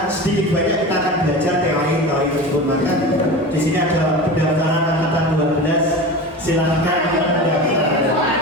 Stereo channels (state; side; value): normal; both; correlation 0.30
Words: sedikit banyak kita akan belajar teori tersebut. Maka di sini ada pendaftaran angkatan 12. Silakan mendaftar.